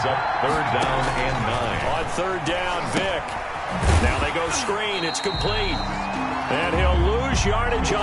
up 3rd down and 9. On 3rd down, Vick. Now they go screen. It's complete. And he'll lose yardage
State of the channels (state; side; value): identical; both; correlation 1.00